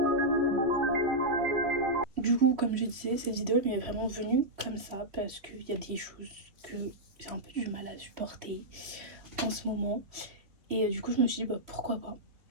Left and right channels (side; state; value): left; late; 3.3 ms